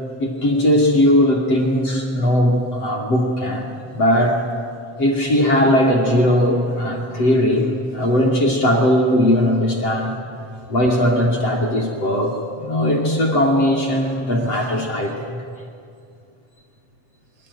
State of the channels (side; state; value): right; late; 7.8 ms